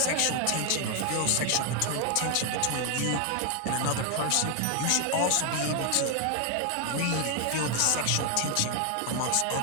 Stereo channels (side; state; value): both; different; correlation 0.00